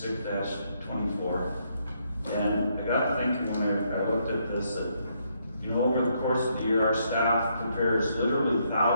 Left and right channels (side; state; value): both; inverted; correlation -0.74